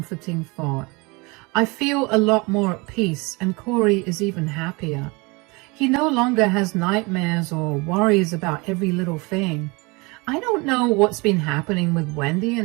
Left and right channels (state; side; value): quieter; left; 26.5 dB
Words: thought. I feel a lot more at peace, and Corey is even happier. He no longer has nightmares or worries about every little thing. I don't know what's been happening with Wendy,